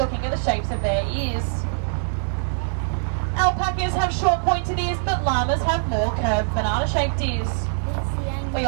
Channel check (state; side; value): silent; left; digital silence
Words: at the shapes of their ears. Alpacas have short pointed ears, but llamas have more curved banana-shaped ears. We